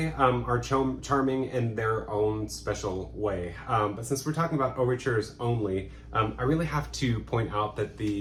are charming in their own special way. But since we're talking about overtures only, I really have to point out that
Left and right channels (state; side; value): identical; both; correlation 1.00